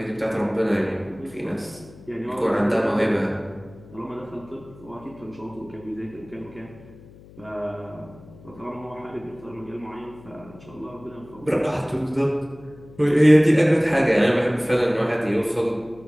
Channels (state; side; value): noise; left; hum, 21 dB below the sound